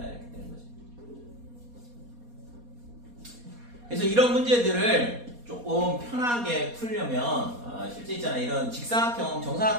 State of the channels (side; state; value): left; late; 4.2 ms